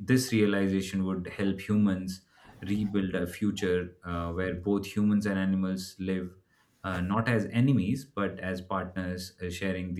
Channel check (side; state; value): both; identical; correlation 1.00